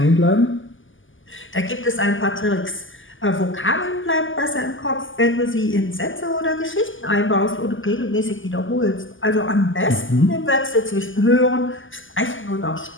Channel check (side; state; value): right; late; 0.58 ms